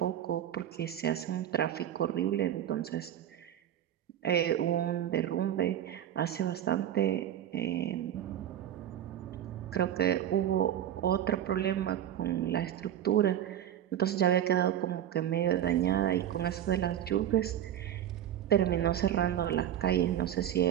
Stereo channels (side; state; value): left; quieter; 10.8 dB